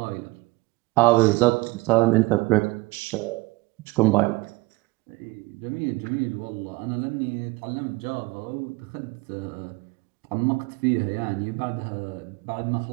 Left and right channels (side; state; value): left; quieter; 22.1 dB